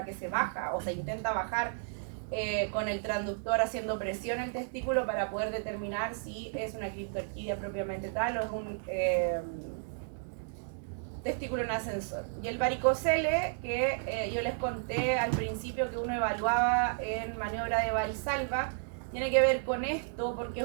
que se baja o se intenta bajar con el transductor haciendo presión al testículo para poder determinar si es una criptorquidia propiamente tal o es un testículo en ascensor. Y el varicocele, que yo les conté al principio que uno evaluaba en maniobra de Valsalva, tiene que ver con esto porque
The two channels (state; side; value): silent; left; digital silence